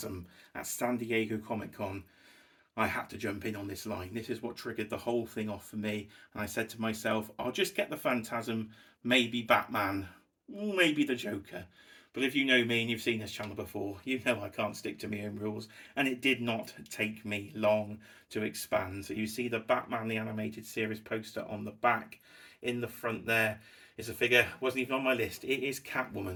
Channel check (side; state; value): both; identical; correlation 1.00